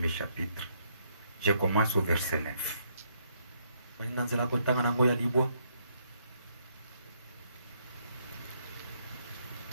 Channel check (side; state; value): both; inverted; correlation -0.72